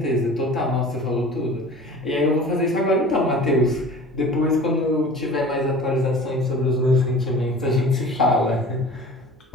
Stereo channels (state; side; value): normal; both; correlation 0.41